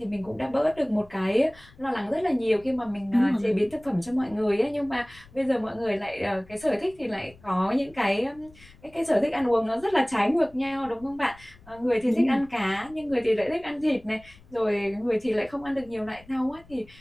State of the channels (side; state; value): left; noise; rumble, 24 dB below the sound